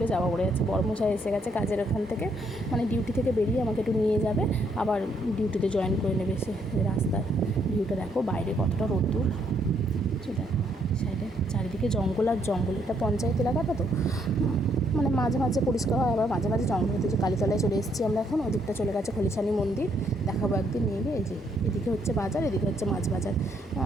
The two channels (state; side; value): normal; both; correlation 0.72